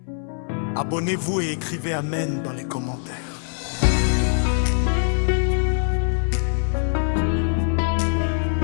abonnez-vous et écrivez Amen dans les commentaires.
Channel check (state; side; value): silent; right; 62 dB below the other